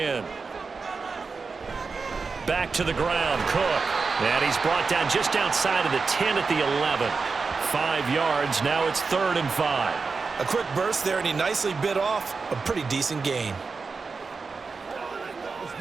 Back to the ground, Cook. And he's brought down just outside of the 10 at the 11. 5 yards. Now it's 3rd and 5. A quick burst there, and he nicely bit off a pretty decent gain. Let's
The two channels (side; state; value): left; quieter; 4.6 dB